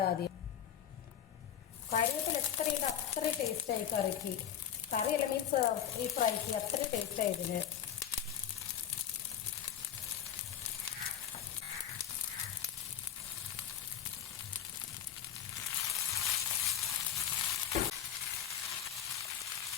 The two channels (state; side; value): quieter; right; 9.6 dB